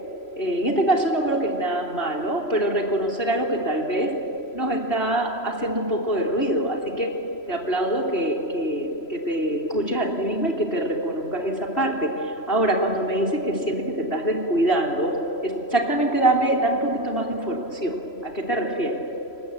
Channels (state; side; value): late; right; 3.1 ms